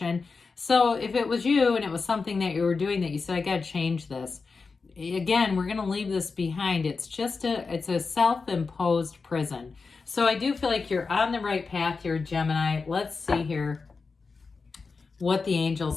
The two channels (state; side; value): quieter; right; 4.5 dB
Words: So if it was you and it was something that you were doing that you said, I got to change this. Again, we're going to leave this behind. It's a self-imposed prison. So I do feel like you're on the right path here, Gemini. Let's see here what the